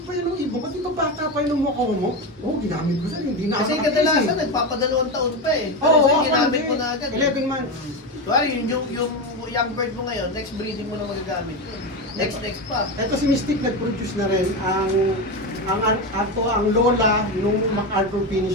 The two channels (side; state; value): both; normal; correlation 0.16